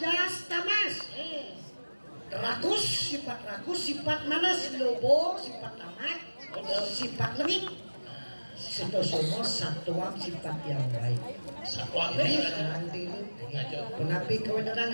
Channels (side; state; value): both; inverted; correlation -1.00